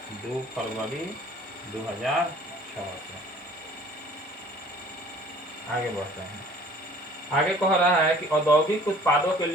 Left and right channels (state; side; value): normal; both; correlation 0.51